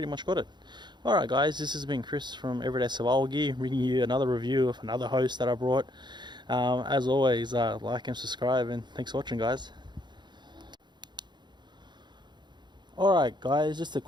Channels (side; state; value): left; late; 0.21 ms